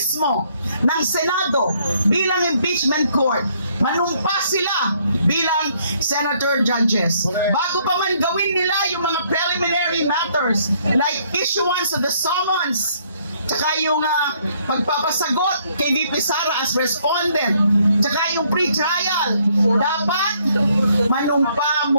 ng Senado bilang impeachment court. Manumpas sila bilang senator judges. Bago pa man gawin nila yung mga preliminary matters like issuance of the summons, tsaka yung pagpapasagot kay VP Sara as respondent, tsaka yung pre-trial, dapat manumpa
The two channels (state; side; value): inverted; both; correlation -0.67